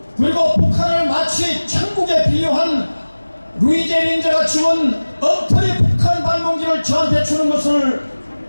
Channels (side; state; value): both; inverted; correlation -1.00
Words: 그리고 북한을 마치 천국에 비유한 루이제 린저가 지은 엉터리 북한 방문기를 저한테 주는 것을